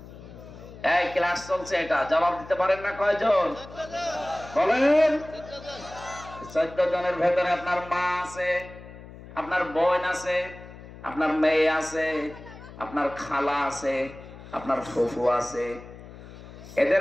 এই ক্লাস চলছে, এটা জবাব দিতে পারেন না? কয়জন বলেন? 14 জনের ভেতরে আপনার মা আছে, আপনার বোন আছে, আপনার মেয়ে আছে, আপনার খালা আছে, আপনার ফুফু আছে।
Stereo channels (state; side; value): noise; left; hum, 16 dB below the sound